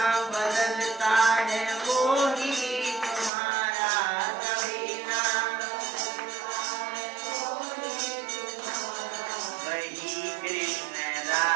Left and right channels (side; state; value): left; drops out; at 3.3 s